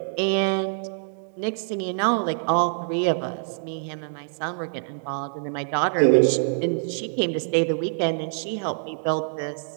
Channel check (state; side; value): silent; left; digital silence